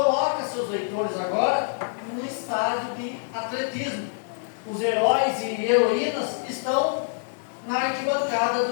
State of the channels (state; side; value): silent; right; digital silence